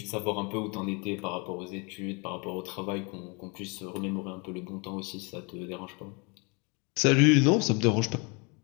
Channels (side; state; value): right; quieter; 31.1 dB